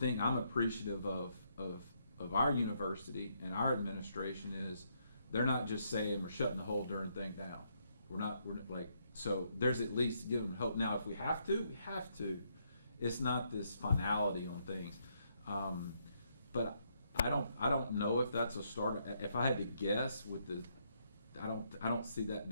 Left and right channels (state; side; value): inverted; both; correlation -0.74